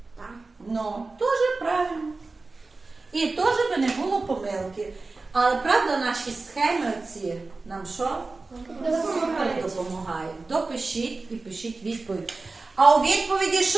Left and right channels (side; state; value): left; quieter; 3.6 dB